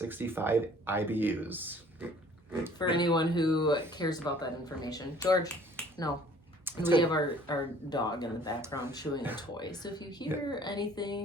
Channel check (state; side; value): normal; both; correlation 0.54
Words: IBUs. For anyone who cares about that information. George, no. We have our dog in the background chewing a toy. So if you hear